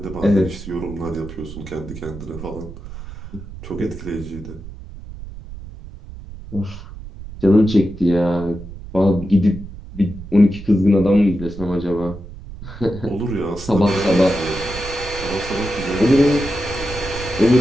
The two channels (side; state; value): right; noise; rumble, 13 dB below the sound